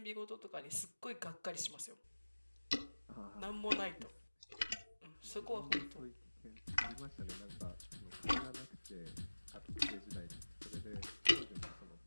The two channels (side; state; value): both; inverted; correlation -1.00